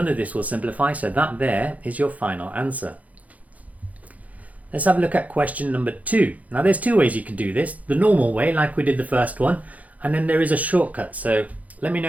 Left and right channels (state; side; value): late; left; 0.073 ms